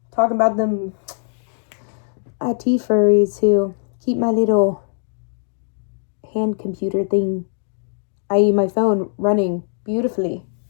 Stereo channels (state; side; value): silent; right; digital silence